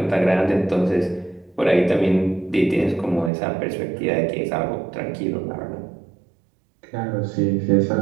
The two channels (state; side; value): drops out; left; at 3.3 s